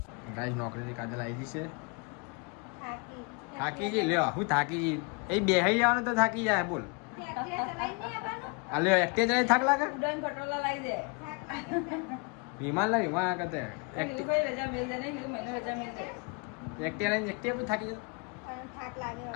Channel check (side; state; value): right; quieter; 32.2 dB